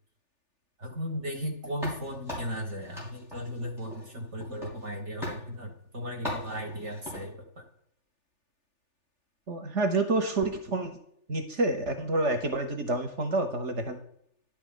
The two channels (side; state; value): left; late; 3.4 ms